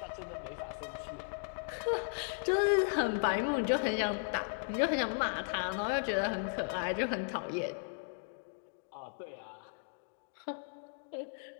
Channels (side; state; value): right; silent; digital silence